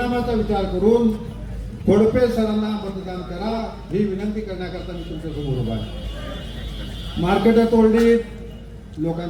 विचार करून खोडपे सरांना मतदान करा ही विनंती करण्याकरता मी तुमच्यासमोर उभा आहे मार्केटं तोडलीत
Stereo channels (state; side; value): identical; both; correlation 1.00